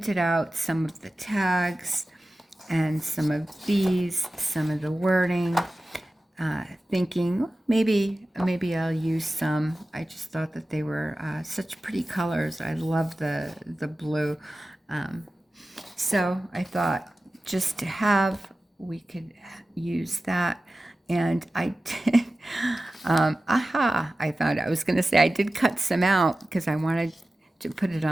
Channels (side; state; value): both; normal; correlation 0.95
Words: out some of the tags and some of these, some of the wording, thinking maybe I'll use some. I just thought that they were such pretty colors. I love the blue. So I thought just to have, we could use that. And I did, I found out. I was going to say I did cut some out because I wanted to put it